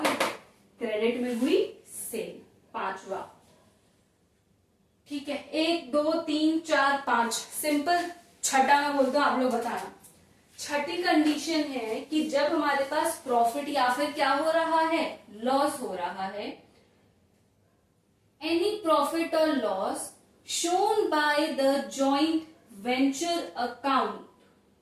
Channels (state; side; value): identical; both; correlation 1.00